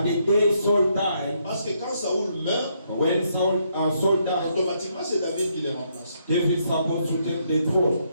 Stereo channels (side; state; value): both; inverted; correlation -0.74